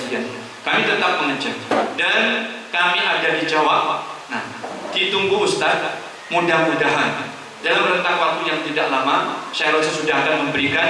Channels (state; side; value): identical; both; correlation 1.00